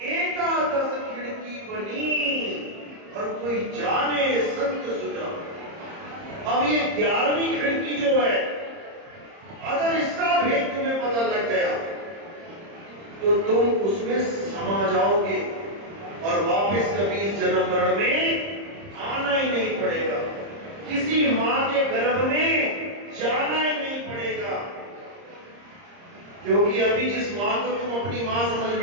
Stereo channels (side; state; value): left; late; 30 ms